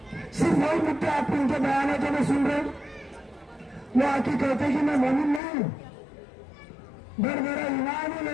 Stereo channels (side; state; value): right; drops out; at 5.4 s